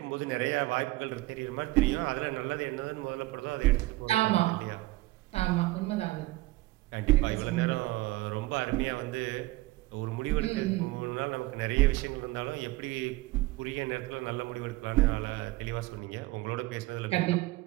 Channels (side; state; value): left; quieter; 19.8 dB